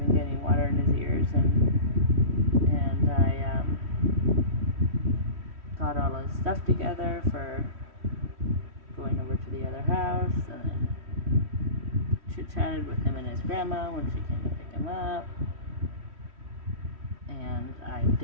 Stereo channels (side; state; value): left; late; 3.1 ms